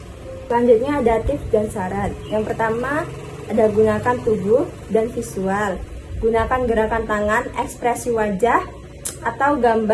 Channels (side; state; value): both; identical; correlation 1.00